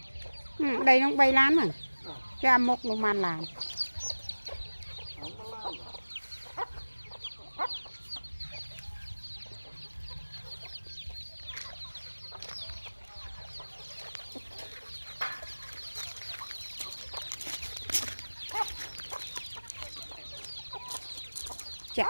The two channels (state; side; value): inverted; both; correlation -1.00